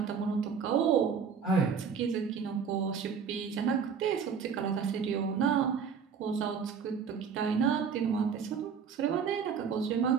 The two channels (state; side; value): quieter; left; 6.6 dB